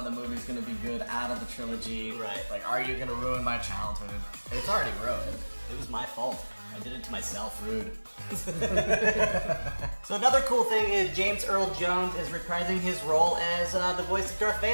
the movies going to be good out of the trilogy? Right. Like, are you going to ruin my childhood? It's already ruined. It was my fault. I did it to myself. Rude. So another cool thing is James Earl Jones is reprising his role as the voice of Darth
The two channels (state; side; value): inverted; both; correlation -1.00